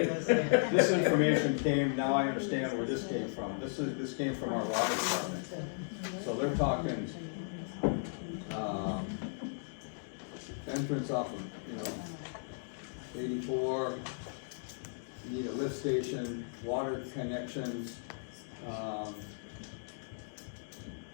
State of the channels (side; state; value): right; silent; digital silence